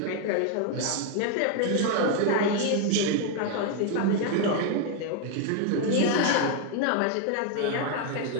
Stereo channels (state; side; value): different; both; correlation 0.01